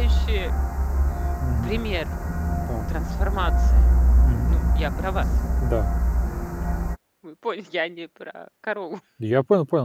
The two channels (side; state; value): both; identical; correlation 1.00